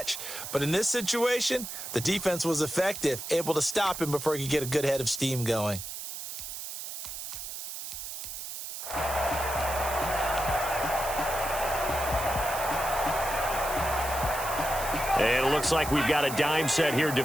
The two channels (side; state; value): right; noise; hiss, 7 dB below the sound